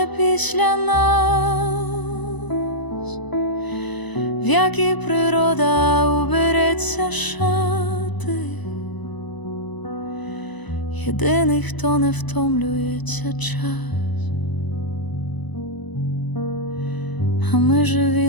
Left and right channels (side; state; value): right; late; 1.0 ms